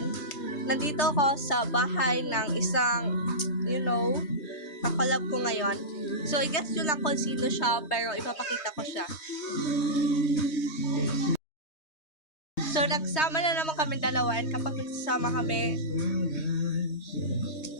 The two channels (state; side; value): late; right; 3.2 ms